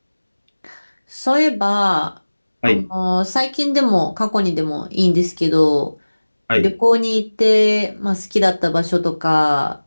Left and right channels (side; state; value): both; inverted; correlation -1.00